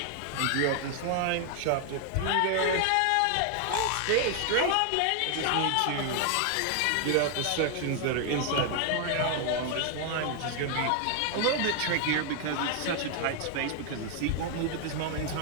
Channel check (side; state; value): both; different; correlation 0.00